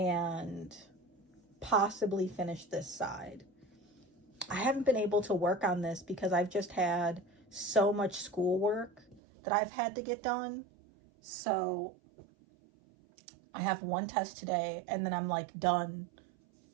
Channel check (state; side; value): drops out; left; at 9.2 s